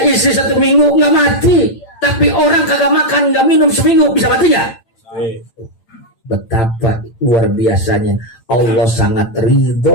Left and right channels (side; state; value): right; late; 8.8 ms